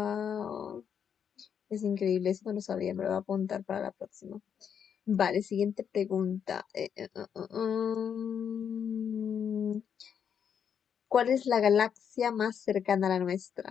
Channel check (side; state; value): right; quieter; 7.8 dB